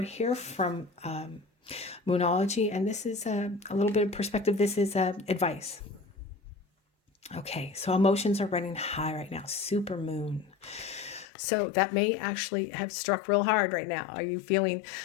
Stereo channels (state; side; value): drops out; right; at 11.2 s